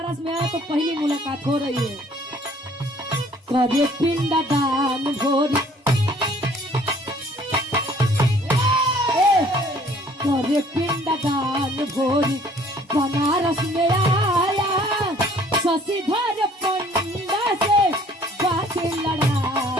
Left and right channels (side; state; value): both; normal; correlation 0.57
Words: में आया तो पहली मुलाकात हो रही है। करे पिंडदान भोरी, करे पिंडदान भोरी बनारस में आया, शशिधर पंडा से बात